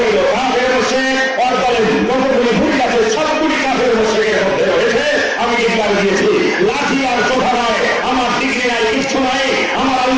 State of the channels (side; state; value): both; identical; correlation 1.00